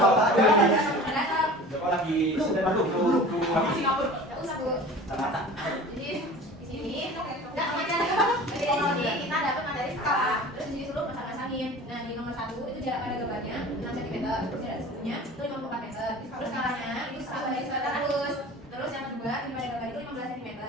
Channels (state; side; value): normal; both; correlation 0.40